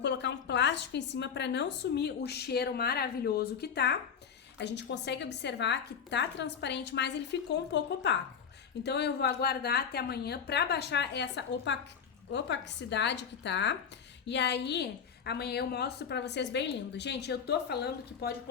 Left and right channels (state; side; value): quieter; right; 7.2 dB